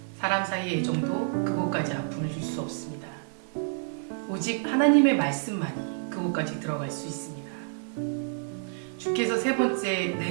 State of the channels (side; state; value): left; silent; digital silence